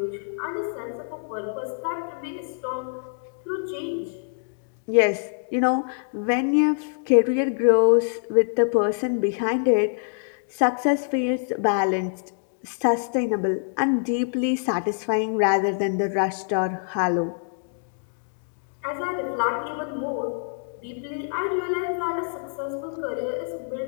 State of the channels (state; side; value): silent; right; digital silence